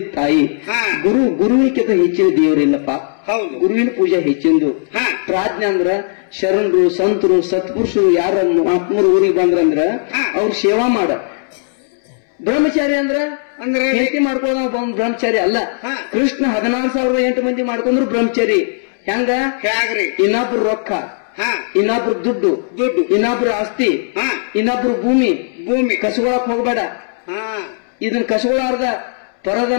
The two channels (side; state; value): right; silent; 69 dB below the other